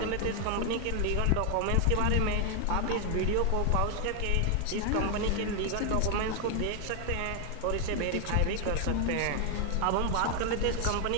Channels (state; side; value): different; both; correlation 0.01